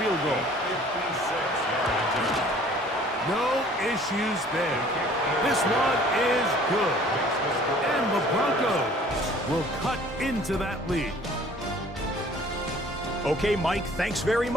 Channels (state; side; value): normal; both; correlation 0.52